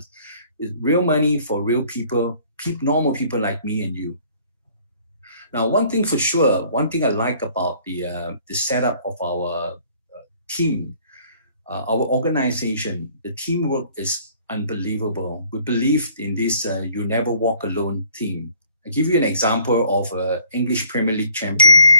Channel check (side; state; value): both; inverted; correlation -0.58